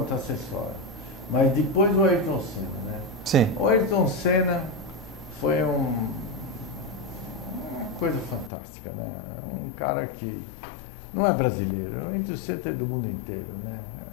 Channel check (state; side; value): drops out; right; at 8.5 s